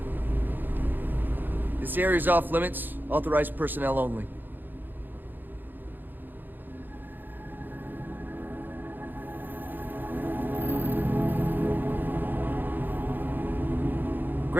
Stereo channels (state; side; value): late; left; 0.090 ms